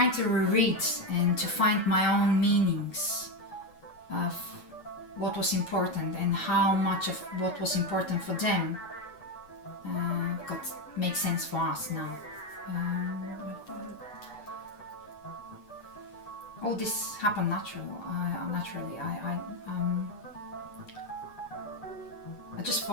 reread and to find my own meanings of what was important and how much of what was important for them makes sense for us now. All this happened naturally. I just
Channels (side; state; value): right; late; 9.0 ms